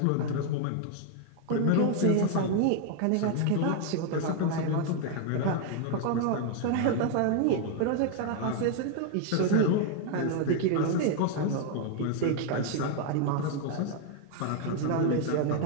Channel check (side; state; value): both; different; correlation 0.00